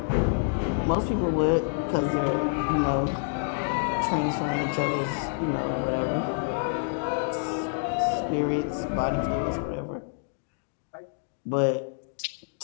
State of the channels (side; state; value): right; silent; digital silence